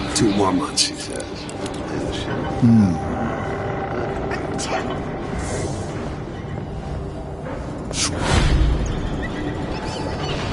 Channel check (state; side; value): identical; both; correlation 1.00